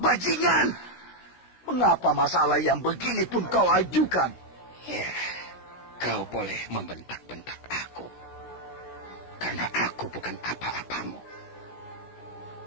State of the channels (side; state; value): right; late; 16 ms